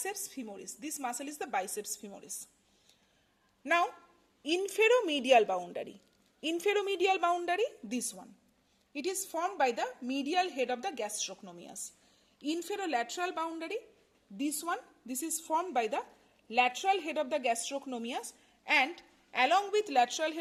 femoris. This muscle is the biceps femoris. Now inferomedial boundary, this one, it is formed by the medial head of the gastrocnemius. Inferolateral boundary, this one, this is formed by the lateral head of the gastrocnemius, and along with lateral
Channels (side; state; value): both; identical; correlation 1.00